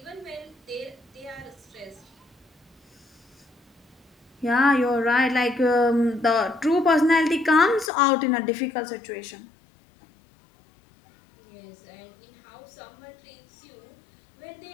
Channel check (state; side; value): drops out; right; at 7.9 s